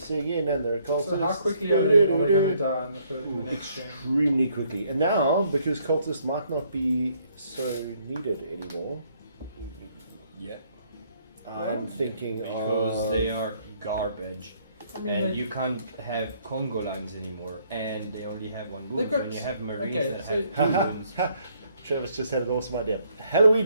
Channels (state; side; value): inverted; both; correlation -0.68